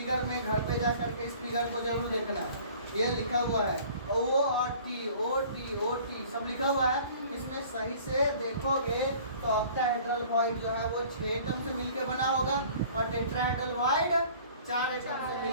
में घर पे जा करके इस फिगर को जरूर देखना। ये लिखा हुआ है O और T, O सब लिखा हुआ है। इसमें सही से देखोगे तो ऑक्टाहेड्रल वॉइड जो है वो 6 एटम से मिलकर बना होगा और टेट्राहेड्रल वॉइड 4 एटम से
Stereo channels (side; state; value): both; inverted; correlation -0.49